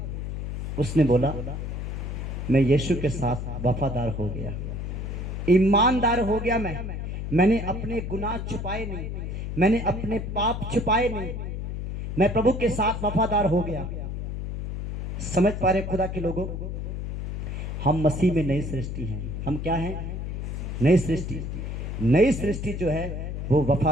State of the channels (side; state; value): left; noise; hum, 5 dB below the sound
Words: उसने बोला, मैं यीशु के साथ वफादार हो गया, ईमानदार हो गया। मैंने अपने गुनाह छुपाए नहीं, मैंने अपने पाप छुपाए नहीं, मैं प्रभु के साथ वफादार हो गया। समझ पा रहे खुदा के लोगों? हम मसीह में नई सृष्टि हैं। हम क्या हैं? नई सृष्टि। नई सृष्टि जो है वो